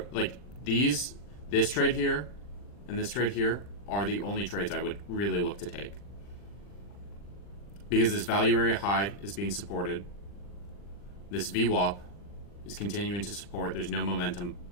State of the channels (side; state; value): right; late; 40 ms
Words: like this trade here and this trade here are the only trades I would really look to take. Because this value area high is being supported. This VWAP is continuing to support. There's no momentum